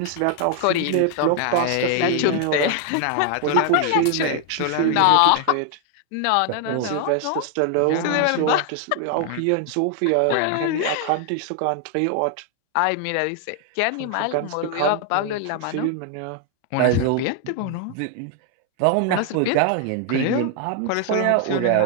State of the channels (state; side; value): different; both; correlation 0.00